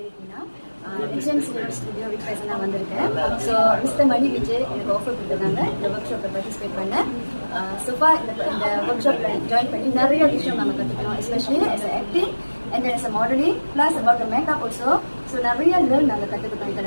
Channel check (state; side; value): inverted; both; correlation -1.00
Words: HMC Studio with present வந்திருக்கேன். So Mr. Mani Vijay எனக்கு offer கொடுத்தாங்க இந்த ஒர்க் ஷாப்ல பார்ட்டிசிபேட் பண்ண. So far இந்த ஒர்க் ஷாப்ல ஜாயின் பண்ணி நிறைய விஷயம் நம்ம கத்துக்கணும், especially as an acting and as a modeling plus about the makeup also. So நிறைய லேர்ன் நாங்கள் கற்றுக்கிட்டோம்